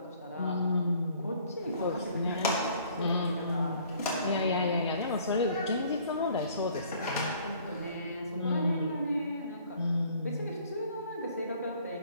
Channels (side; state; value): both; inverted; correlation -0.57